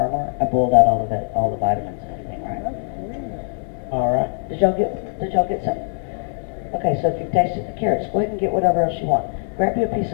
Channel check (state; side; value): silent; right; 64 dB below the other